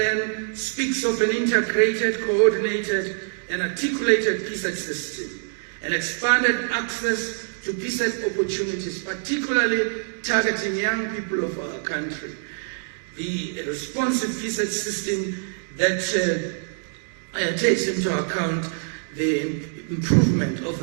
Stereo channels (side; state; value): left; silent; digital silence